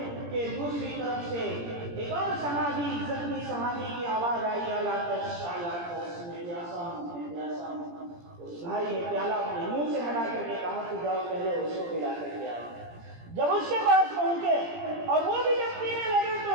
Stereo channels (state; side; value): late; left; 17 ms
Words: کہ دوسری طرف سے ایک اور صحابی، زخمی صحابی کی آواز آئی، اللہ میں پیاسا ہوں، میں پیاسا ہوں۔ اس بھائی نے پیالہ اپنے منہ سے ہٹا کر کے کہا کہ جاؤ پہلے اس کو پلا کر کے آؤ۔ جب اس کے پاس پہنچے اور وہ بھی جب پینے لگے تو